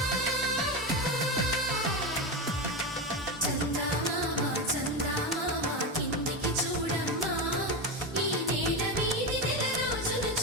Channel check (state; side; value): normal; both; correlation 0.16